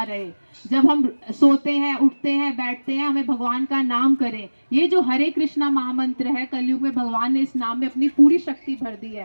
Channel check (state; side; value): inverted; both; correlation -1.00